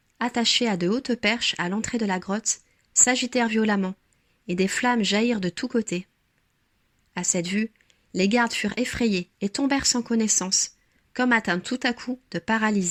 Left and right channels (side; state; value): both; identical; correlation 1.00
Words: attachées à de hautes perches à l'entrée de la grotte, s'agitèrent violemment, et des flammes jaillirent de tous côtés. À cette vue, les gardes furent effrayés et tombèrent sans connaissance, comme atteints tout à coup de